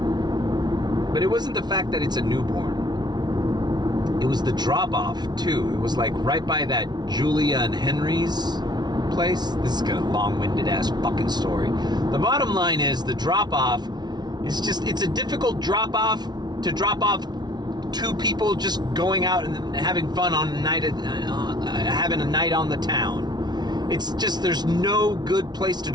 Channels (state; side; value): late; left; 0.20 ms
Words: but it wasn't the fact that it's a newborn. It was the drop-off too. It was like right by that Julia and Henry's place. This is a long-winded ass fucking story. The bottom line is the drop-off is it's a difficult drop-off to drop off two people just going out and having fun on a night, having a night on the town. It's just, there's no good place to